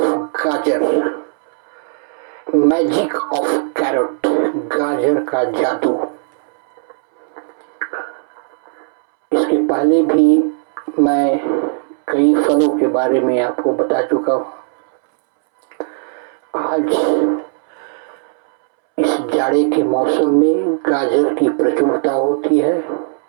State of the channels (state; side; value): silent; left; 68 dB below the other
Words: गाजर, magic of carat, गाजर का जादू. इसके पहले भी मैं कई फलों के बारे में आपको बता चुका हूँ. आज इस जाड़े के मौसम में गाजर की प्रचुरता होती है